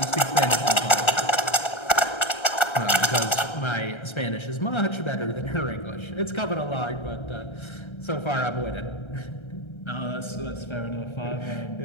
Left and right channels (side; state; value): right; late; 1.3 ms